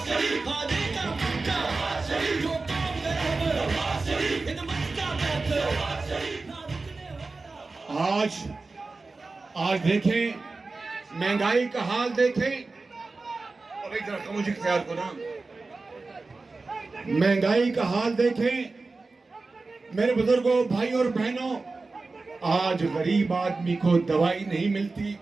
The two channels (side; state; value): left; quieter; 3.7 dB